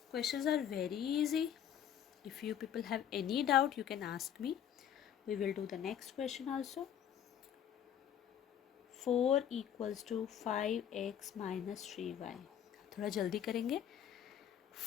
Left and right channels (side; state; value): right; quieter; 9.5 dB